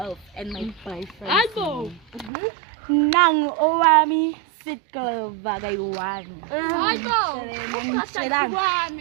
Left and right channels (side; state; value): left; drops out; at 2.3 s